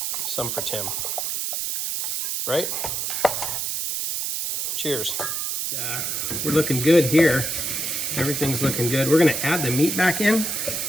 some for Tim. Right? Cheers. We're looking good here. Everything's looking good. We're gonna add the meat back in.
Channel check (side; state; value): right; noise; hiss, 1 dB below the sound